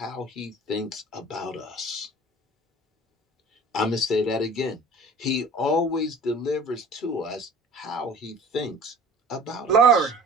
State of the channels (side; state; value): both; normal; correlation 0.44